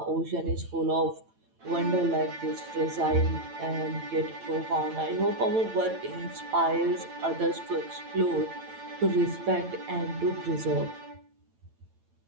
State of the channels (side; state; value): left; late; 9.0 ms